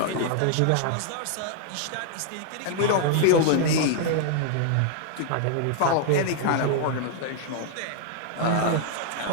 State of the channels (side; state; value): both; different; correlation 0.00